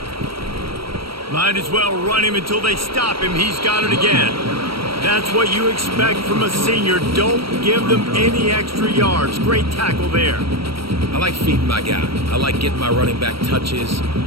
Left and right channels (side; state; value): left; late; 0.75 ms